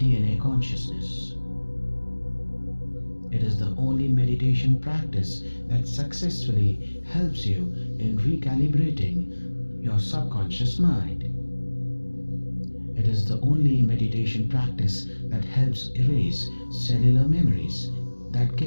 consciousness. It is the only meditation practice that successfully helps you in recalibrating your subconscious mind. It is the only meditation practice that helps erase cellular memories that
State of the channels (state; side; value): inverted; both; correlation -1.00